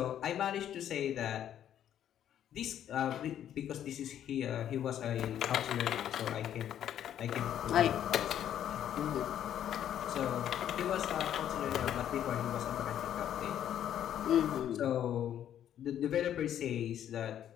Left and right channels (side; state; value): right; quieter; 10.4 dB